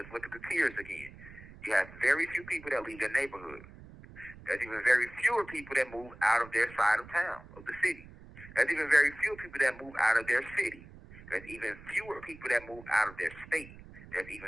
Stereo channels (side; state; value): right; noise; rumble, 18 dB below the sound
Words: look at the tiers again. You have very few people that leave their neighborhood. There's even very fewer people that move out of their side of town, of the city. There's even very few people that move out of their city. There's even fewer people that move out of their state. There's